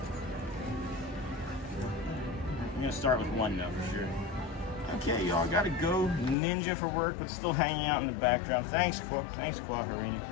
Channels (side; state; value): right; drops out; at 6.4 s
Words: I'm gonna start with 1 though, for sure. Okay, y'all, gotta go. Ninja for work, but still hanging out in the background. Thanks, Harina.